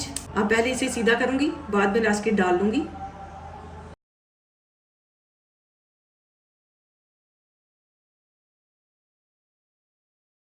अब पहले इसे सीधा करूँगी, बाद में रास्केट डाल लूँगी।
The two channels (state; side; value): identical; both; correlation 1.00